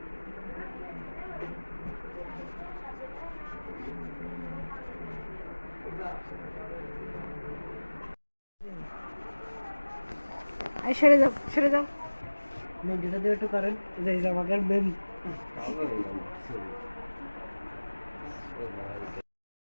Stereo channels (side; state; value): both; inverted; correlation -1.00